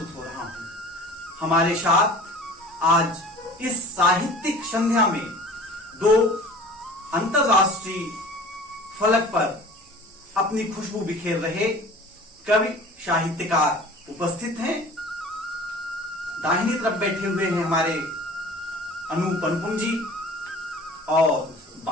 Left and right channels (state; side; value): normal; both; correlation 0.43